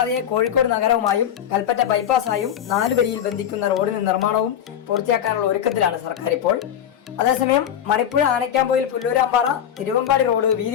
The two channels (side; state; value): right; quieter; 9.7 dB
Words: കോഴിക്കോട് നഗരവുമായും കൽപ്പറ്റ ബൈപ്പാസായും 4 വരിയിൽ ബന്ധിക്കുന്ന റോഡിന് നിർമ്മാണവും പൂർത്തിയാക്കാനുള്ള ഒരുക്കത്തിലാണ് സർക്കാർ ഇപ്പോൾ. അതേസമയം മണിപ്പുഴ ആനക്കാമ്പൊയിൽ പുല്ലൂരാമ്പാറ തിരുവമ്പാടി റോഡ്